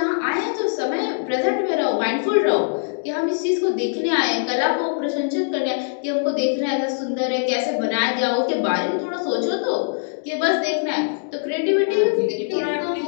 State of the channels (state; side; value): silent; right; digital silence